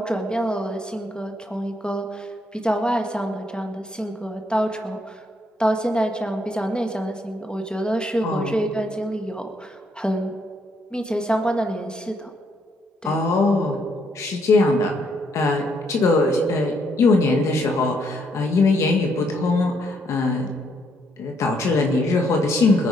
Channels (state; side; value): normal; both; correlation 0.73